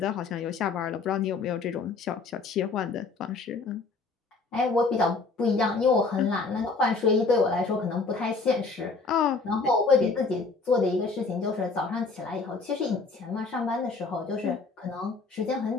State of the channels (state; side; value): quieter; right; 4.2 dB